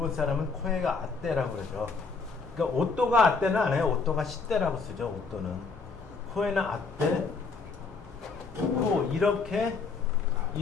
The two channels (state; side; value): quieter; right; 4.5 dB